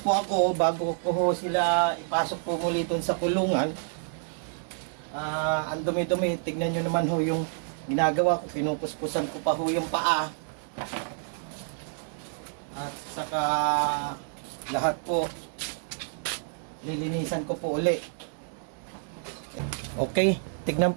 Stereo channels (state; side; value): silent; left; digital silence